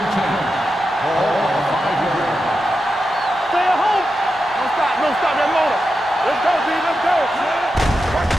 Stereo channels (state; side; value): normal; both; correlation 0.89